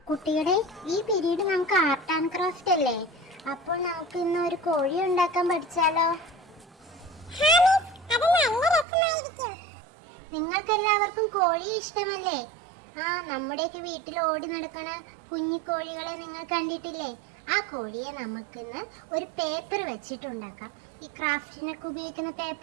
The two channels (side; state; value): left; drops out; at 8.8 s